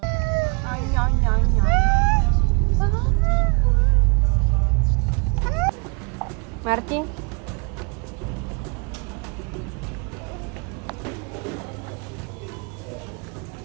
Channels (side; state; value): left; quieter; 33.0 dB